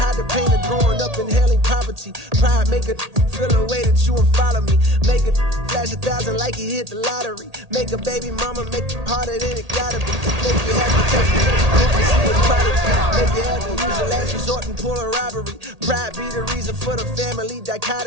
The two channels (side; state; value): left; late; 1.8 ms